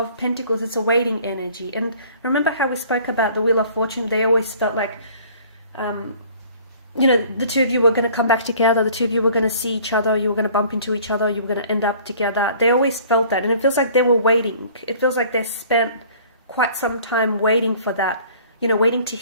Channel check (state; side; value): inverted; both; correlation -0.52